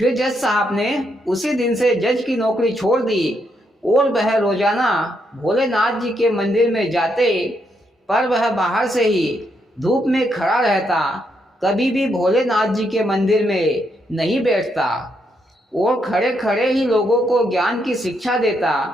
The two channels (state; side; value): normal; both; correlation 0.78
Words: जज साहब ने उसी दिन से जज की नौकरी छोड़ दी और वह रोजाना भोलेनाथ जी के मंदिर में जाते, पर वह बाहर से ही धूप में खड़ा रहता, कभी भी भोलेनाथ जी के मंदिर में नहीं बैठता और खड़े खड़े ही लोगों को ज्ञान की शिक्षा देता।